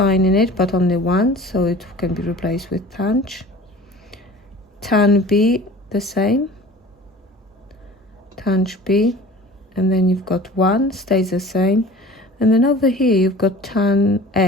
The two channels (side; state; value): both; normal; correlation 0.42